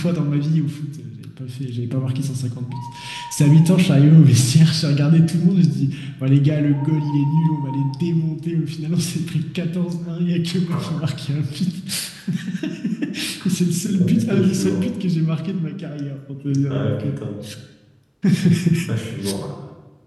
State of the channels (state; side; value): identical; both; correlation 1.00